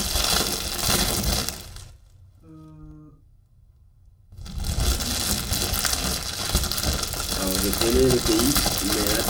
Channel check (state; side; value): identical; both; correlation 1.00